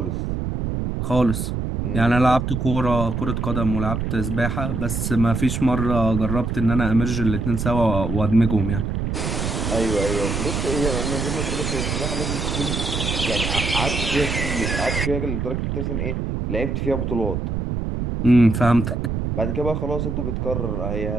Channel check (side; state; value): right; noise; rumble, 2 dB below the sound